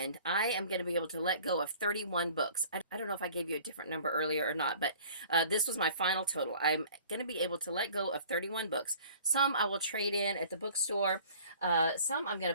I am going to be able to let go of 31 books. I don't know if I gave you a different number earlier or not, but this was my final total. I'm going to be able to let go of 31 books. Some I will trade in at the bookstore. Some I'm going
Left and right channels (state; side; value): inverted; both; correlation -0.50